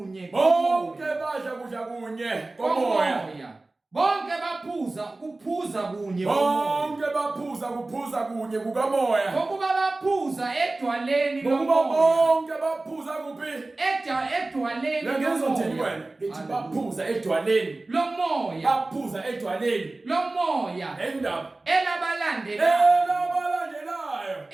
Bonke badla kudla kunye komoya. Bonke kuphuza kunye komoya. Bonke kuphuza kunye kukamoya. Ngokuba baphuza edwaleni lomoya. Bonke baphuza kuphi? Edwaleni lomoya. Ngizothini wena? Ngithi baphuza edwaleni lomoya. Baphuza edwaleni lomoya. Endaba elabalandelayo.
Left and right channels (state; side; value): quieter; left; 3.1 dB